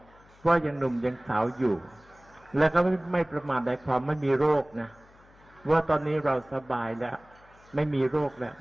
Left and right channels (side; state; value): left; noise; hum, 28 dB below the sound